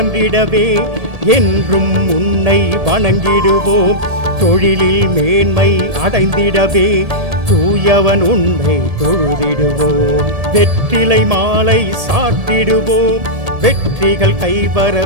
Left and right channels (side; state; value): left; late; 1.7 ms